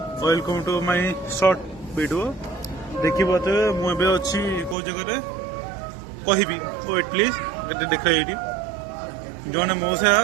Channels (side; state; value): left; drops out; at 4.8 s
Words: welcome to my short video देखी बात मुझे अच्छी कौ जगह कहबी वेट प्लीज गए देख ये जड़े मौसा